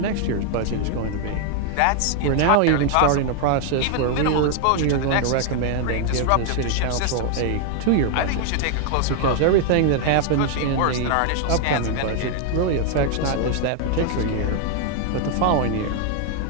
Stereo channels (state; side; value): different; both; correlation 0.00